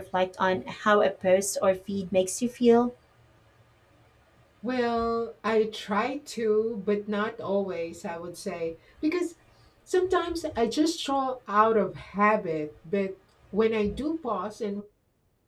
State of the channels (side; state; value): both; identical; correlation 1.00